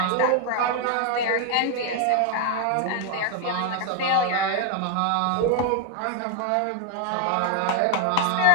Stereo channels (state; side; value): different; both; correlation 0.01